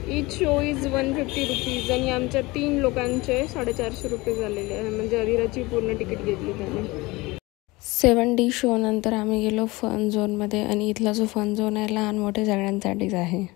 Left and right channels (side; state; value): right; quieter; 22.2 dB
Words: इच शो इज 150 रुपीज आणि आमच्या 3 लोकांचे 450 रुपये झालेले आहे. म्हणजे अदिराची पूर्ण तिकीट घेतली त्याने. 7D शो नंतर आम्ही गेलो फन झोनमध्ये. आणि इथला जो फन झोन आहे लहान मोठे सगळ्यांसाठीच आहे.